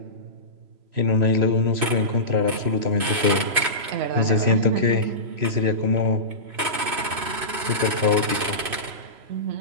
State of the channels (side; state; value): left; late; 3.0 ms